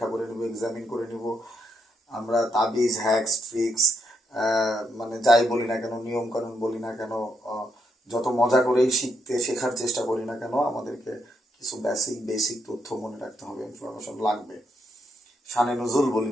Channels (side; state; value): both; normal; correlation 0.79